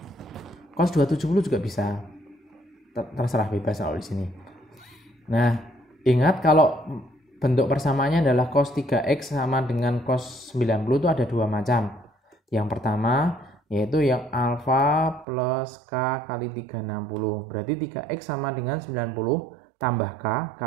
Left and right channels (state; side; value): drops out; left; at 15.2 s